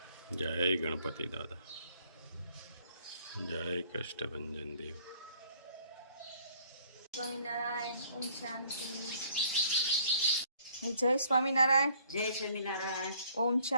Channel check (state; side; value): inverted; both; correlation -0.60